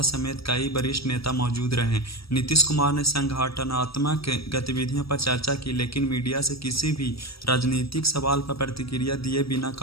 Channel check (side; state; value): right; late; 0.76 ms